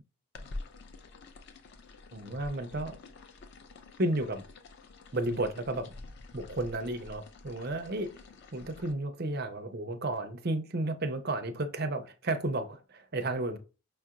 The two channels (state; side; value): normal; both; correlation 0.31